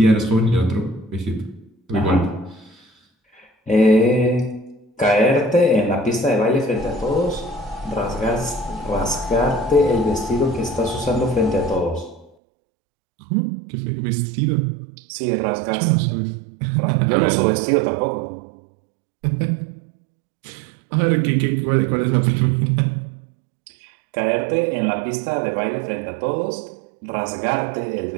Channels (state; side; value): drops out; left; at 12.3 s